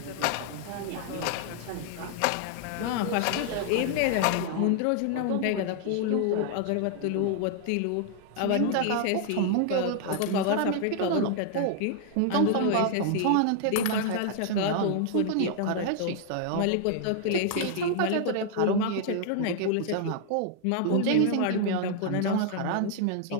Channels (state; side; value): different; both; correlation -0.01